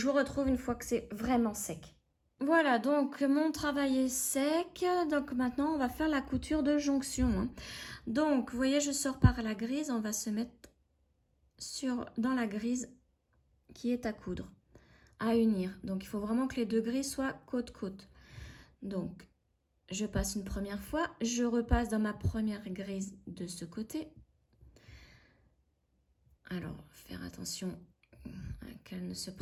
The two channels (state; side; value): identical; both; correlation 1.00